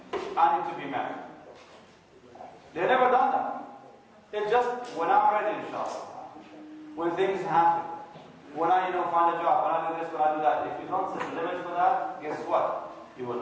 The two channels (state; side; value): identical; both; correlation 1.00